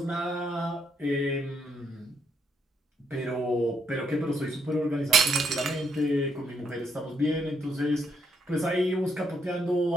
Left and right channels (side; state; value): both; normal; correlation 0.74